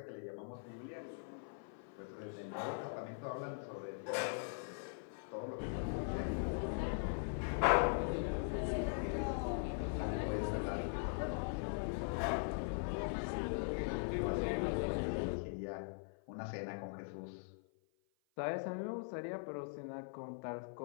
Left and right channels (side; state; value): right; silent; 50 dB below the other